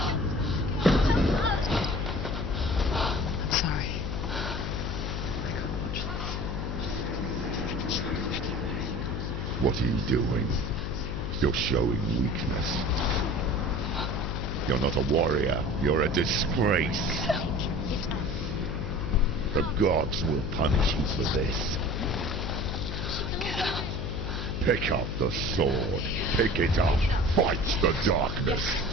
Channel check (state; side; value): noise; left; hum, 3 dB below the sound